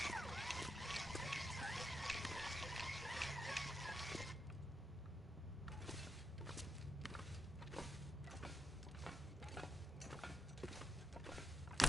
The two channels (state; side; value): normal; both; correlation 0.81